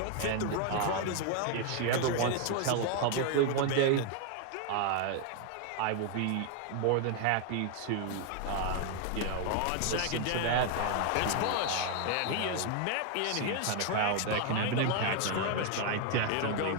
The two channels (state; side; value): different; both; correlation 0.01